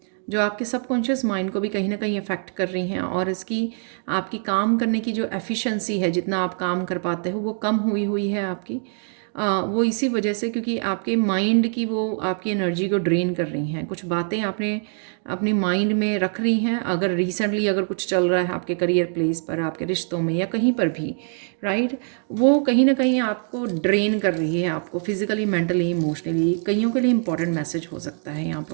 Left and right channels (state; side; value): silent; left; 56 dB below the other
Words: जो आपके सबकॉन्शियस माइंड को भी कहीं ना कहीं अफेक्ट कर रही हैं, और इसकी आपकी काम करने की जो एफिशिएंसी है, जितना आप काम कर पाते हो वो कम हुई है आपकी। वो इसी वजह से क्योंकि आपके माइंड की वो आपकी एनर्जी को ड्रेन कर रही हैं। कुछ बातें आपने अपनी माइंड में रख रही हैं, अगर रिसेंटली अगर कुछ चल रहा है आपके करियर प्लेस पर, आपके रिश्तों में या कहीं पर भी, राइट, वो कहीं ना कहीं आपको ड्रेन कर रही है, आपको फिजिकली, मेंटली, इमोशनली। कईयों के लिए इंपॉर्टेंट मैसेज हो सकता है यहाँ पर,